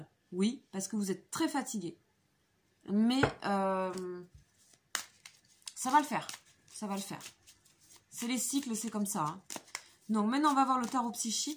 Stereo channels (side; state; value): both; identical; correlation 1.00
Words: oui, parce que vous êtes très fatigué. Mais ça va le faire. Ça va le faire. C'est les cycles, c'est comme ça. Hein. Donc maintenant, on va voir le tarot